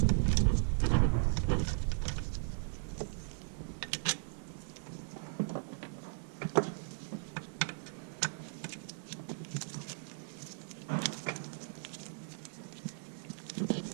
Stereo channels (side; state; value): left; silent; digital silence